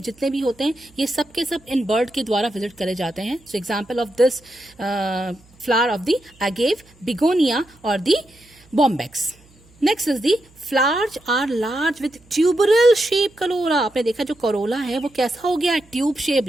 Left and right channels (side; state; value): right; noise; hum, 29 dB below the sound